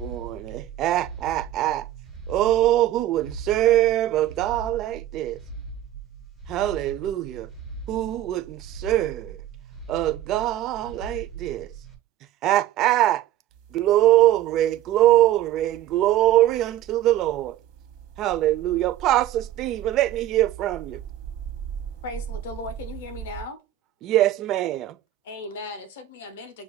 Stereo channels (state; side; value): quieter; left; 13.2 dB